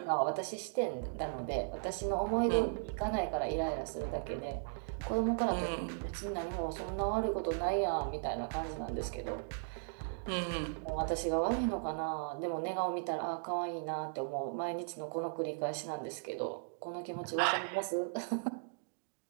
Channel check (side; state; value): left; silent; digital silence